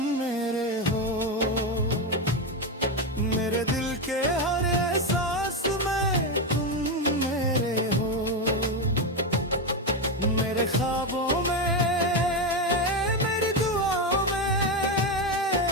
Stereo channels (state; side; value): normal; both; correlation 0.11